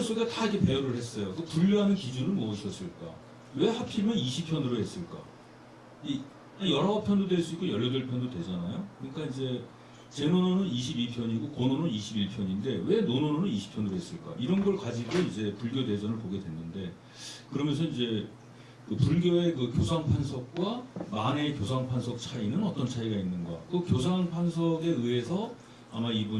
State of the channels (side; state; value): both; identical; correlation 1.00